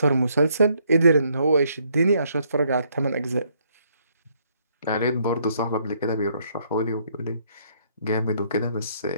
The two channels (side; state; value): both; inverted; correlation -0.69